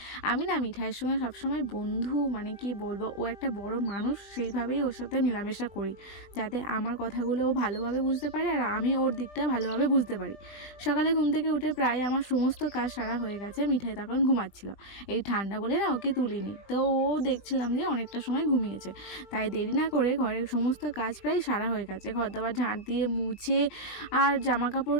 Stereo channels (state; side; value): late; right; 20 ms